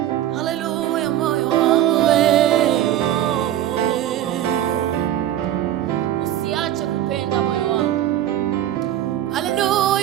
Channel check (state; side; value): quieter; left; 12.2 dB